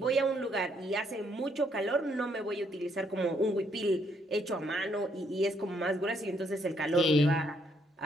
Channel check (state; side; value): normal; both; correlation 0.71